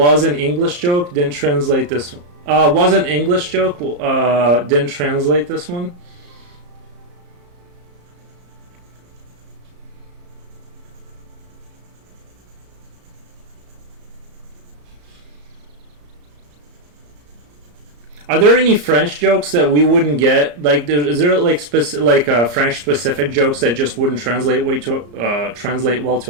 an English joke, didn't translate this one. Was an English joke, didn't translate this one. Are there any French jokes that we wouldn't get? Like, is there like French specific jokes that just wouldn't translate translate well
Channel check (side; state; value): left; late; 34 ms